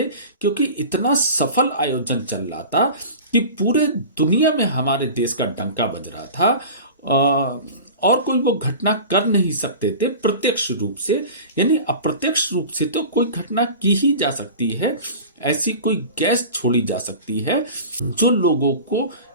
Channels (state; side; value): inverted; both; correlation -0.35